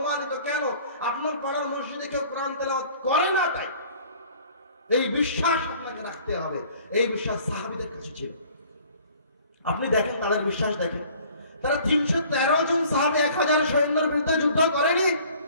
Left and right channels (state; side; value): inverted; both; correlation -0.52